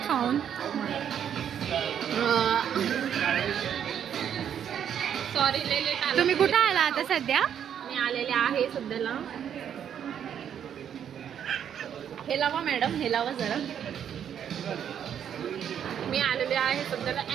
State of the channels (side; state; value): left; quieter; 9.0 dB